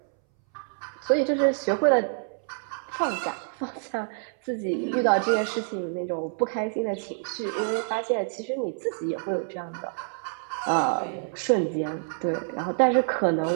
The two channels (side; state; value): left; silent; 60 dB below the other